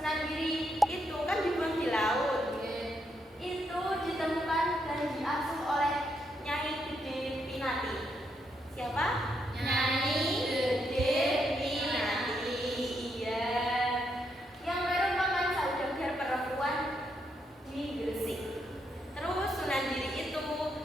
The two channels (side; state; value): both; normal; correlation 0.79